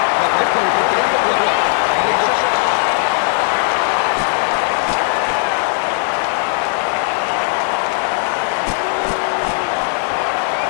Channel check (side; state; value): right; silent; 58 dB below the other